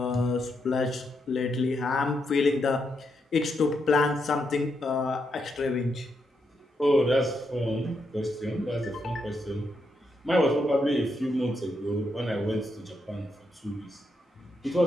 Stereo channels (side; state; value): both; normal; correlation 0.81